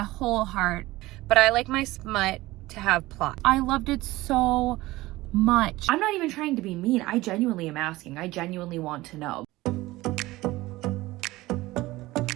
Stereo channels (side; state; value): left; quieter; 18.7 dB